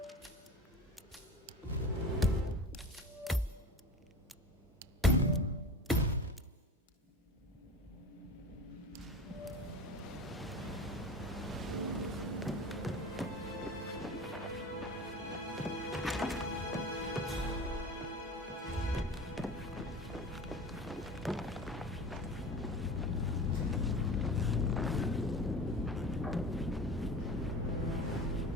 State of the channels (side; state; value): both; normal; correlation 0.34